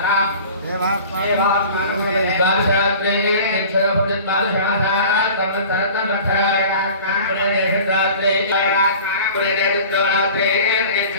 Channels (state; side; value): inverted; both; correlation -0.42